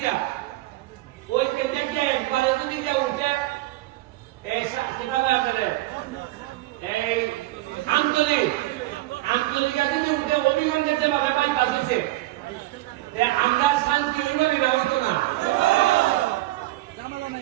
ওই কেন্দ্রে গিয়ে একবারে যদি গিয়ে উঠে এই আন্তরিকা যদি উঠে অভিগঞ্জের যেভাবে বাইপাস হয়েছে আমরা শান্তি হইব না, হইতো না।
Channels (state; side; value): quieter; left; 18.0 dB